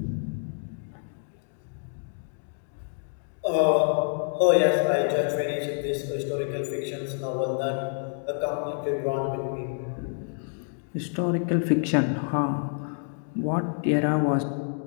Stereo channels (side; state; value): right; silent; 60 dB below the other